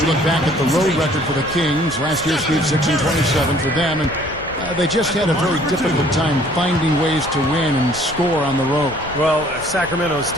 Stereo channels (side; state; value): left; noise; rumble, 15 dB below the sound